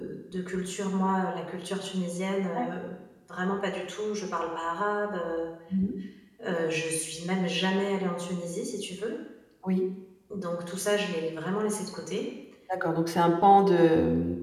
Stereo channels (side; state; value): both; identical; correlation 1.00